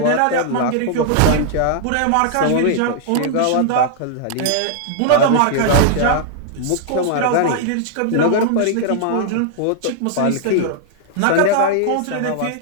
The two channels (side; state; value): both; different; correlation -0.01